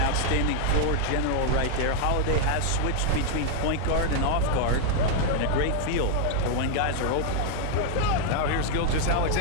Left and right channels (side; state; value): both; different; correlation 0.00